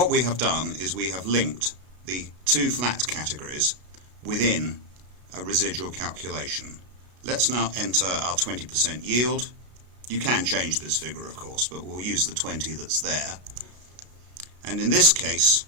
we have done is we have linked the two flat categories within a residual calculation. Let's now enter our 20% yield. You can change this figure, of course, but we'll use the 20 that's there. And in this case,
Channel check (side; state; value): left; late; 33 ms